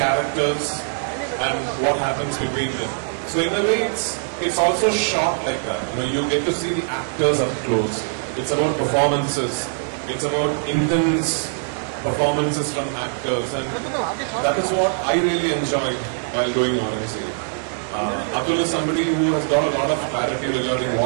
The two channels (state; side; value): silent; left; 64 dB below the other